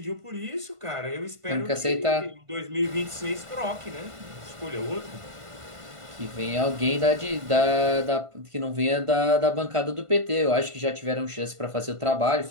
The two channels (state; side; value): late; left; 1.5 ms